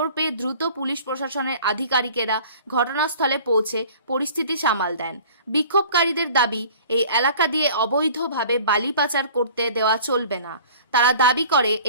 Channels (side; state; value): both; inverted; correlation -0.46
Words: পেয়ে দ্রুত পুলিশ প্রশাসনের আধিকারিকেরা ঘটনাস্থলে পৌঁছে পরিস্থিতি সামাল দেন। বিক্ষোভকারীদের দাবি, এই এলাকা দিয়ে অবৈধভাবে বালি পাচার করতে দেওয়া চলবে না। তারা দাবি করে